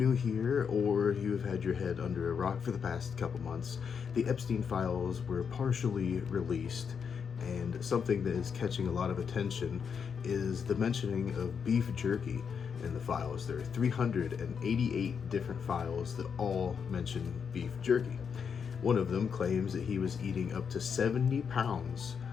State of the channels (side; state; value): right; quieter; 6.7 dB